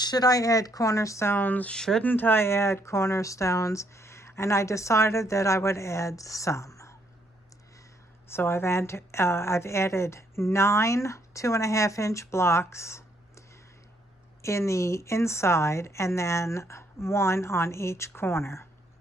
I add cornerstones? Shouldn't I add cornerstones? And I decided that I would add some. So I've added 9 2.5-inch blocks in the inside and then 1 on each corner.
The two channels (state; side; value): normal; both; correlation 0.71